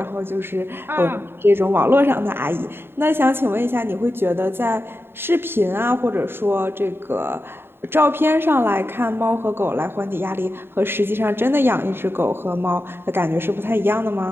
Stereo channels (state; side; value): late; left; 0.11 ms